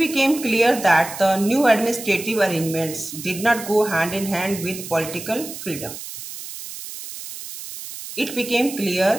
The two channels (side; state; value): right; noise; hiss, 11 dB below the sound